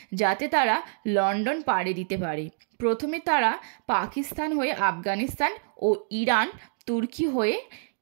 যাতে তারা লন্ডন পাড়ি দিতে পারে। প্রথমে তারা পাকিস্তান হয়ে আফগানিস্তান ও ইরান, তুর্কি হয়ে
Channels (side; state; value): left; silent; digital silence